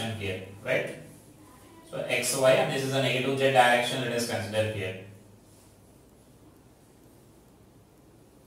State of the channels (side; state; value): both; identical; correlation 1.00